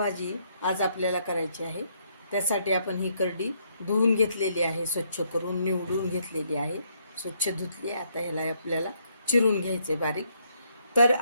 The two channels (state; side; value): inverted; both; correlation -0.72